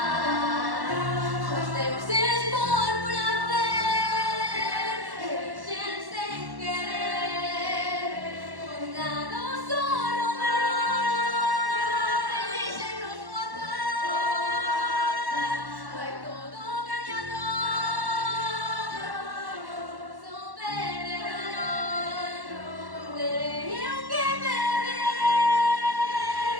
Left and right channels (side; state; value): left; late; 1.1 ms